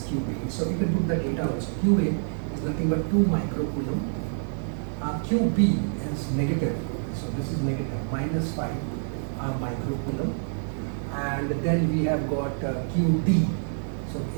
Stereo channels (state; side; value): silent; left; 60 dB below the other